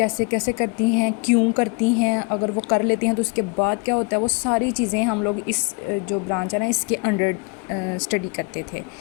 कैसे करती हैं, क्यों करती हैं, अगर वो कर लेती हैं तो उसके बाद क्या होता है, वो सारी चीज़ें हम लोग इस जो ब्रांच है ना इसके अंडर स्टडी करते थे।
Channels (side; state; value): right; quieter; 31.1 dB